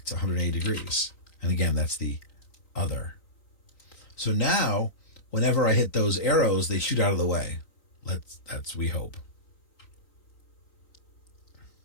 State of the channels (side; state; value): right; late; 3.9 ms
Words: 180 degrees? And again, that's the other. So now, whenever I hit those arrows, they shoot out of the way. That's we hope.